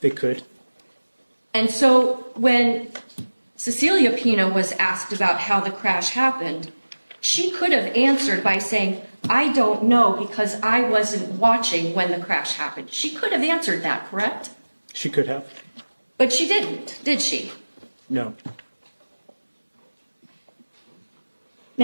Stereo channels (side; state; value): both; inverted; correlation -1.00